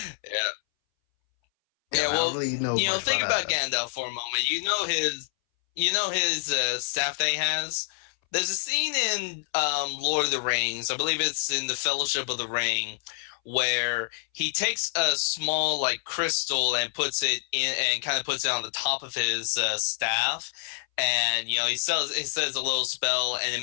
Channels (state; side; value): silent; right; 60 dB below the other